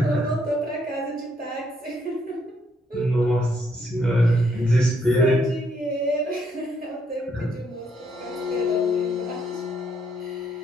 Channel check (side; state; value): both; normal; correlation 0.72